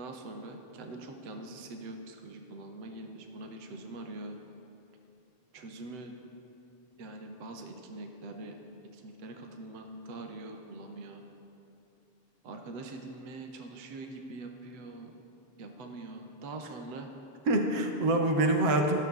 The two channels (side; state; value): left; late; 7.6 ms